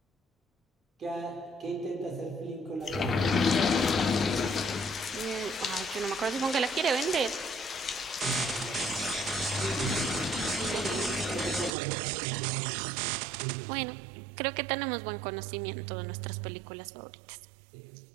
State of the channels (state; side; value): drops out; left; at 11.7 s